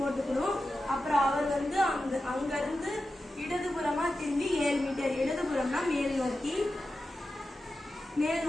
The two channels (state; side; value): normal; both; correlation 0.92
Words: அப்புறம் அவர் வந்து அங்கிருந்து இடதுபுறமா திரும்பி 7 மீட்டர், இடதுபுறம்னா மேல் நோக்கி